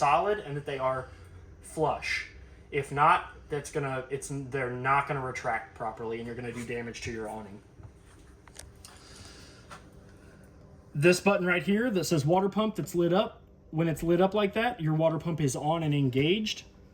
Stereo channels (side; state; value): both; identical; correlation 1.00